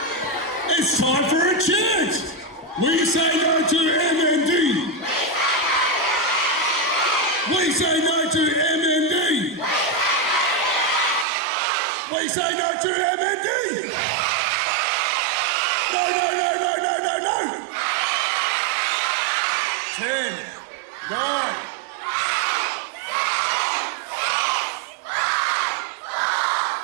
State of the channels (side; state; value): left; drops out; at 11.2 s